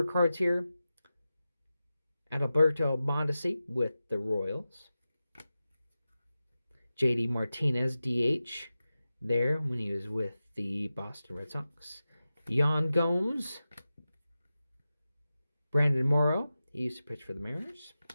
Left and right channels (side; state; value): both; inverted; correlation -0.94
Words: cards here. Adalberto Mondesi with the Royals. JD Martinez, DH, there when he was with the Boston Red Sox. Yan Gomes. Brandon Morrow, he used to pitch for the Mariners.